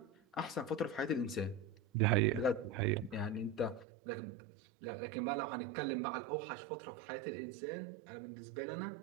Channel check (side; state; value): left; drops out; at 3.9 s